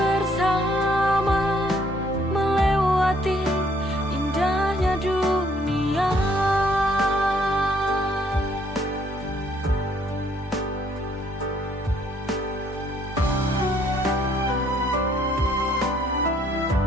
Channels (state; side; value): normal; both; correlation 0.65